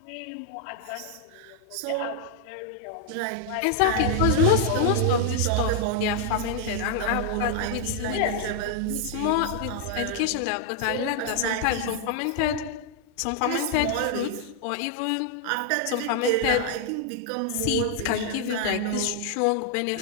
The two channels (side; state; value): both; different; correlation 0.00